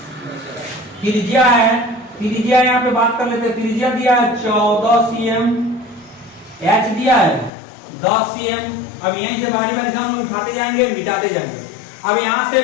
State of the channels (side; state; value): right; drops out; at 7.5 s